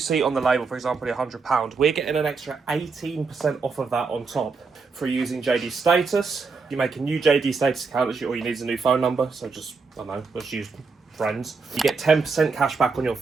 on the label, for example, £100, we're getting an extra 18% off of that on top for using JD Status. You make a new JD Status account, or you need a new phone number, so just, I don't know, let's use friends. You get 10% cash back on your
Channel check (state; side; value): quieter; left; 4.6 dB